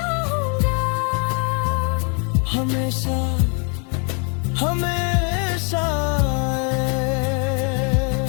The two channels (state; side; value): quieter; right; 37.4 dB